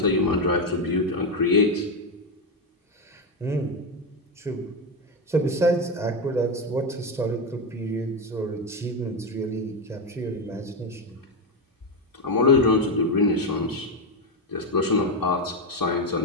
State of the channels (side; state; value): both; normal; correlation 0.10